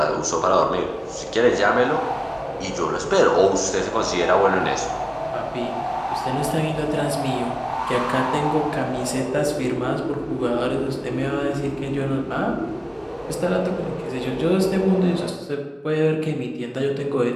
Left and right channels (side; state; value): both; identical; correlation 1.00